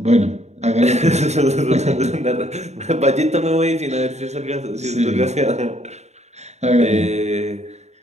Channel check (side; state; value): left; late; 0.32 ms